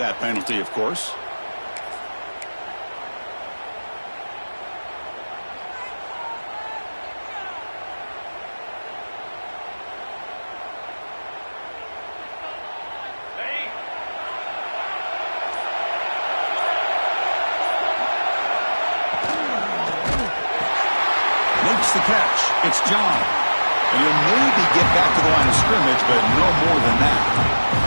penalty, of course. The catch. It's John. And he'll maybe get back to the line of scrimmage, but no more than that.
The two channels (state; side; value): inverted; both; correlation -1.00